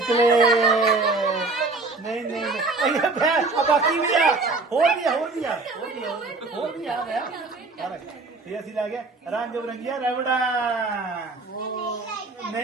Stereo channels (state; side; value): quieter; left; 3.7 dB